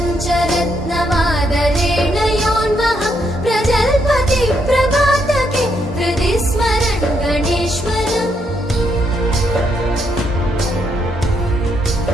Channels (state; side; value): normal; both; correlation 0.76